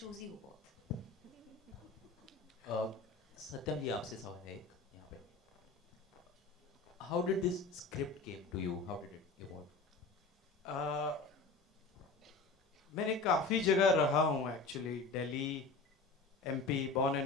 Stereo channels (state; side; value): quieter; right; 3.8 dB